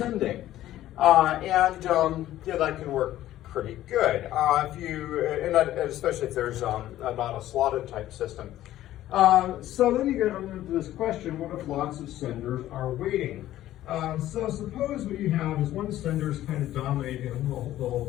Yeah, that can work pretty good. Especially if there's not a slotted type system. So then you get into this question, what if lots of senders are waiting? So suppose what you have is one sender's kind of dominating the whole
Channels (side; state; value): right; quieter; 13.8 dB